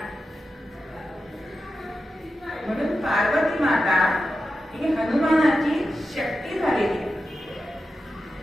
म्हणून पार्वती माता ही हनुमानाची शक्ती झालेली आहे।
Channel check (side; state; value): both; normal; correlation 0.91